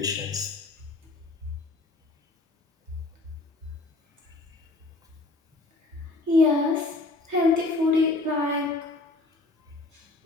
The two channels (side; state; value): right; quieter; 3.3 dB